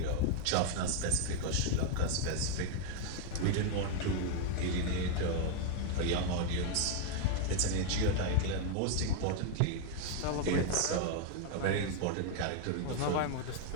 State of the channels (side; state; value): both; different; correlation 0.00